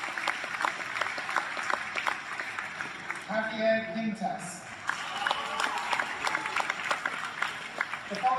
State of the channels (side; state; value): both; identical; correlation 1.00